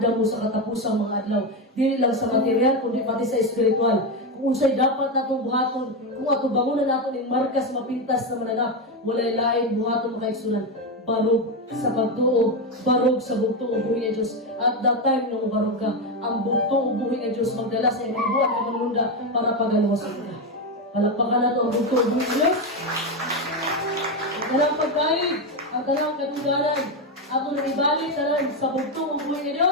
mo sa katapusang mga adlaw. Dili lang sa material, kundi pati sa espiritual. Kung unsay dapat natong buhaton, kung ato bangunan naton ing markas mapintas na mananap, walay lain buhaton mga isunan. Barog sa pagtuo, barog sa bugtong ubuhi nga Diyos. At that time nung barog ka, ang bugtong ubuhi nga Diyos magdala sa iyong buwan ng manunda para pagalawasan ka. Palakpakan na ito ang bugtong ubuhi nga Diyos. Ang talang pagkain, ang talang katugalan, ato na ibalik talan sa bugtong ubuhi nga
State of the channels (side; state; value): both; normal; correlation 0.10